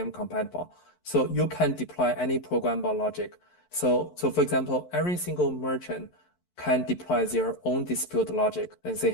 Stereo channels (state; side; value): late; right; 11 ms